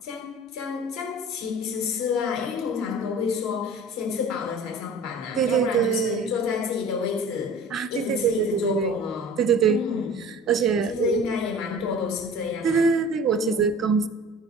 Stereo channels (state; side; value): normal; both; correlation 0.42